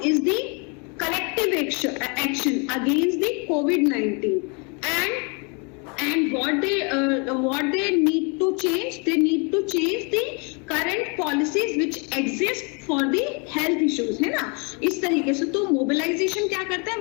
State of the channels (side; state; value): right; quieter; 33.6 dB